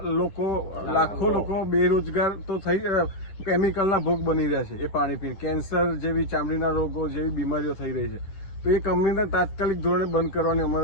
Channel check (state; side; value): late; right; 10 ms